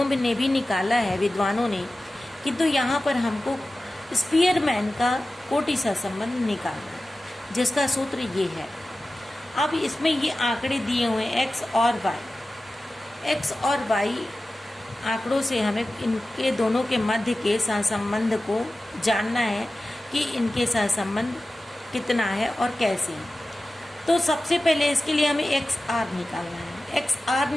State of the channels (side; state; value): both; normal; correlation 0.95